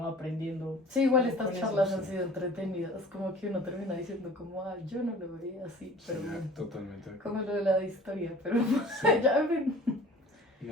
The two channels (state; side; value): normal; both; correlation 0.45